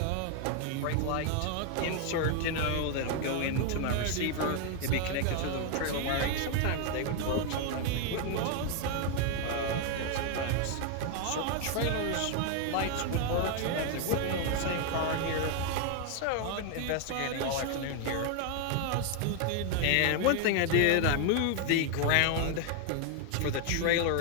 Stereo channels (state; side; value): different; both; correlation 0.00